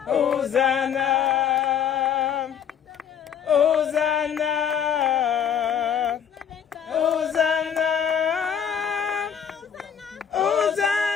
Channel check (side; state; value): right; quieter; 8.1 dB